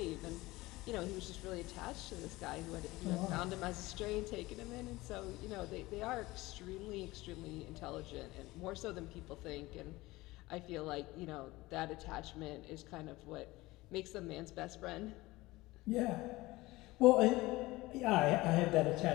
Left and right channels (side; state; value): right; quieter; 19.9 dB